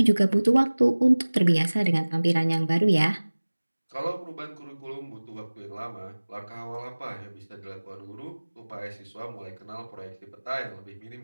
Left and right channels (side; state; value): both; inverted; correlation -1.00